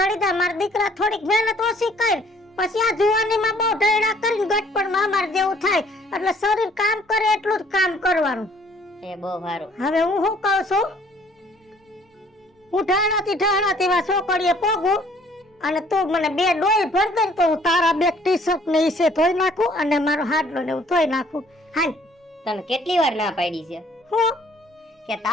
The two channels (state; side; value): normal; both; correlation 0.59